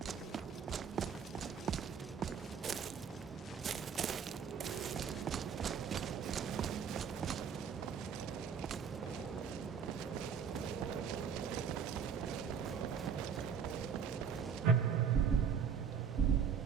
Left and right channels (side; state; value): left; quieter; 6.9 dB